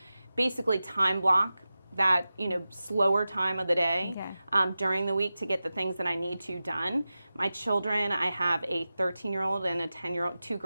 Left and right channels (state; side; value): inverted; both; correlation -0.94